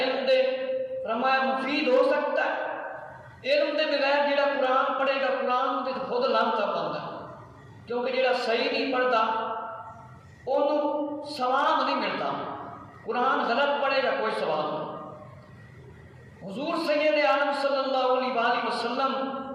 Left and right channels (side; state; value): both; identical; correlation 1.00